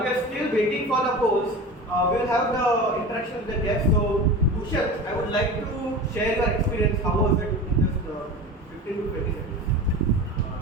we are still waiting for the polls, we will have the interaction with the guests. So, Bhushan, I would like to share your experience. How was it in just 15 to 20 seconds?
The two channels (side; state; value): both; normal; correlation 0.32